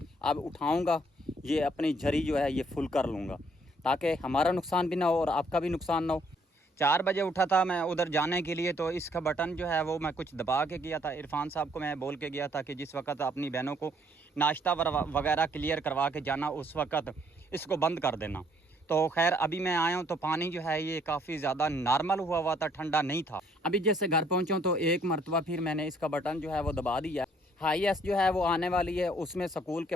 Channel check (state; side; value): normal; both; correlation 0.65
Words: अब उठाऊँगा, ये अपनी झरी जो है ये फुल कर लूँगा ताकि हमारा नुकसान भी ना हो और आपका भी नुकसान ना हो। 4 बजे उठा था मैं उधर जाने के लिए, तो इसका बटन जो है वो मैं कुछ दबा के गया था। इरफान साहब को मैं बोल के गया था कि जिस वक्त अपनी बहनों को नाश्ता वगैरह क्लियर करवा के जाना उस वक्त इसको बंद कर देना। तो खैर अभी मैं आया हूँ तो पानी जो है ये काफ़ी ज़्यादा नॉर्मल हुआ था, ठंडा नहीं था। अभी जैसे घर पहुँचा तो एक मरतबा फिर मैंने इसका बटन जो है वो दबा दिया। हाईएस्ट जो है वो आने वाली है, उसमें स्कूल के